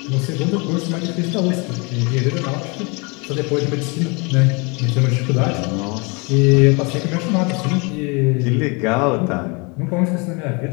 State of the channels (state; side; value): quieter; right; 30.4 dB